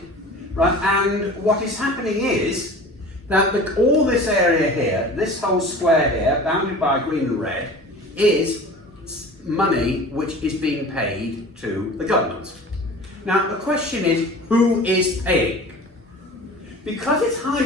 right, and what is happening is that all this area here, this whole square here, bounded by green and red, is money which is being paid to the government. Now the question is, who is paying? Because it's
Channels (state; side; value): normal; both; correlation 0.40